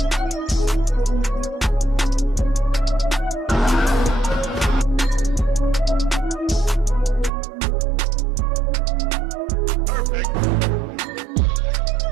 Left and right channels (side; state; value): left; drops out; at 7.3 s